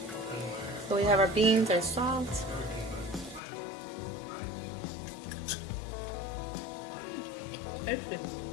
So we have our beans are soft. taste it.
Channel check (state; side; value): drops out; right; at 3.4 s